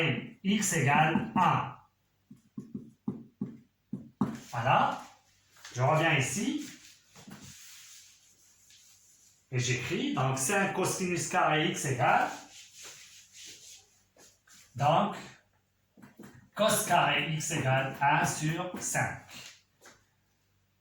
x égale 1. Voilà. Je reviens ici. Et j'écris, donc 5 cosinus carré x égale, donc, cos carré x égale 1 sur 5.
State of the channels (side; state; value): both; identical; correlation 1.00